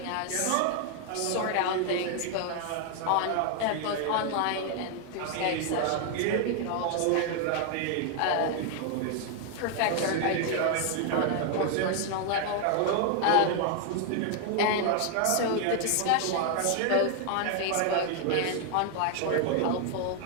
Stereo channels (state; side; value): different; both; correlation 0.00